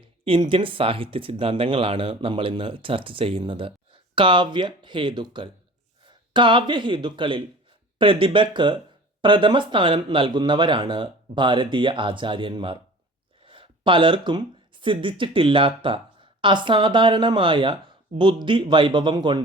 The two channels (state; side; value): normal; both; correlation 0.42